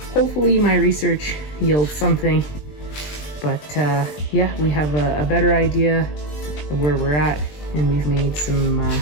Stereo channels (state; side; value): late; right; 20 ms